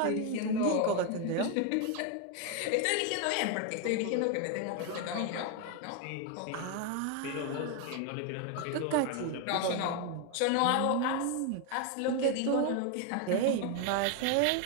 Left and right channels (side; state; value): both; different; correlation 0.01